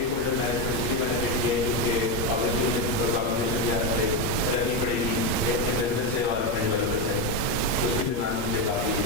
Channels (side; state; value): right; late; 8.5 ms